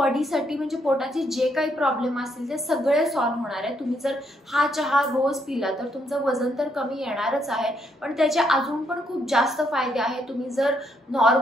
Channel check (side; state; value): both; normal; correlation 0.74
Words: म्हणजे पोटाचे जे काही प्रॉब्लेम असतील ते सगळे सॉल्व्ह होणार आहे। तुम्ही जर हा चहा रोज पिला तर तुमचं वजन तर कमी येणारच आहे, पण त्याचे अजून पण खूप जास्त फायदे आहेत। तुम्ही जर